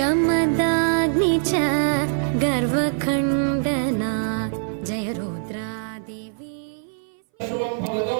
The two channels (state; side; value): silent; left; 60 dB below the other